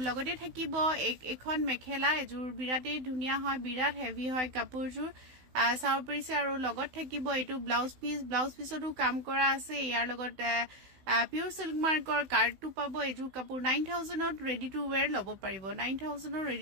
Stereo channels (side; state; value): left; late; 16 ms